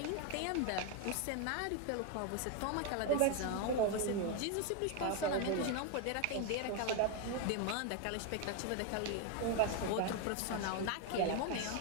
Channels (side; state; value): both; different; correlation 0.01